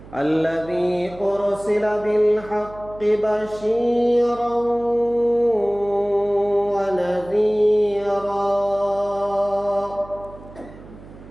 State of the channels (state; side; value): noise; right; hum, 19 dB below the sound